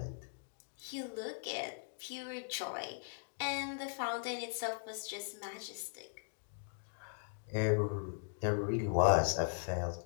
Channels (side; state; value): right; silent; digital silence